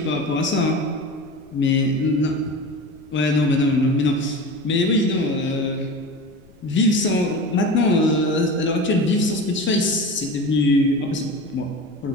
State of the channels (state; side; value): noise; left; rumble, 27 dB below the sound